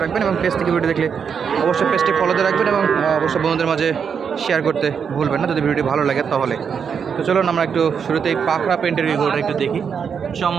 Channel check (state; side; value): quieter; left; 6.8 dB